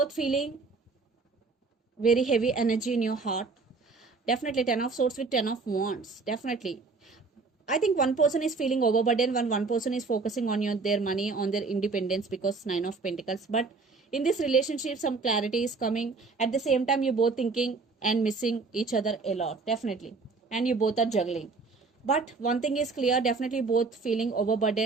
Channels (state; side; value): quieter; left; 4.2 dB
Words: feeling very heavy energy in your heart. Definitely 10 of Swords with 10 of Wands. Definitely. I think one person is feeling overburdened when one person is focusing on their money, on their independence because 9 of Pentacles. But in this relationship, some clarity is coming. At the same time, you're both thinking and missing each other a lot. Definitely. And you both are juggling. But one thing is clear, definitely both feeling